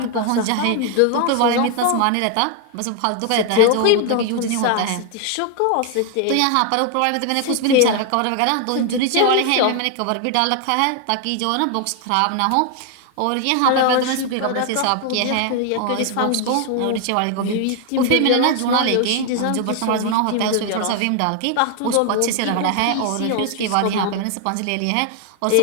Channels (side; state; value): both; different; correlation 0.00